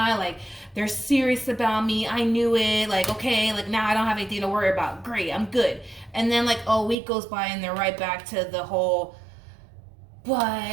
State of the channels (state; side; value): drops out; left; at 7.0 s